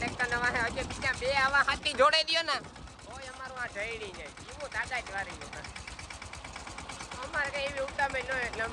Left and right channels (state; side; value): identical; both; correlation 1.00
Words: ના વાહે હજી બીજા બે આવા હાથી જોડે દયો ને તોય અમારું આ જઈડી જાય એવું દાદા જ વારી અમારે કઈ એવી ઉતામય ન એટલે